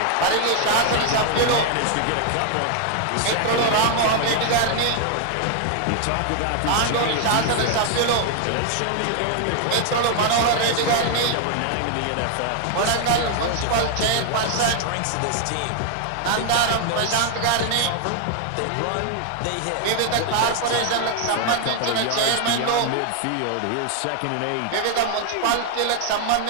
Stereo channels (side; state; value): both; different; correlation 0.00